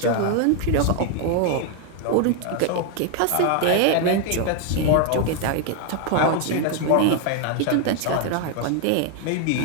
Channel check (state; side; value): different; both; correlation 0.01